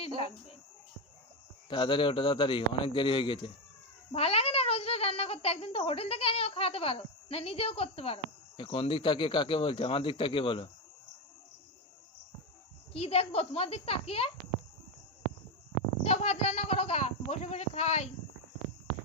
লাগবে। তাড়াতাড়ি ওঠো, তাড়াতাড়ি, অনেক দেরি হয়ে গেছে। ভালো লাগে না রোজ রোজ রান্না করতে? একদিন তো হোটেল থেকে এনেও খাওয়াতে পারো, না নিজেও করতে পারো। কোন দিক তাকিয়ে কাকে বলছে? আমার দিক তাকিয়ে বলো। কি দেখবো তোমার দিক তাকিয়ে? যাও ভাত রান্না করো গা, বসে বসে খাই।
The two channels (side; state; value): both; normal; correlation 0.11